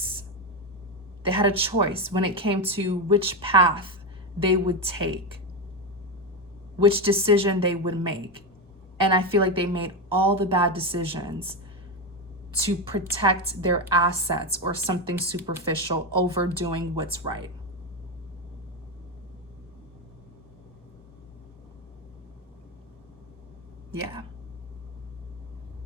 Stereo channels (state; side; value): normal; both; correlation 0.12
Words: They had a choice when it came to which path they would take, which decision they would make. And I feel like they made all the bad decisions to protect their assets or something superficial over doing what's right. Yeah.